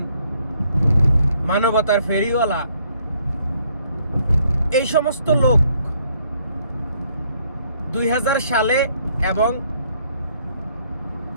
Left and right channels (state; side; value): inverted; both; correlation -0.68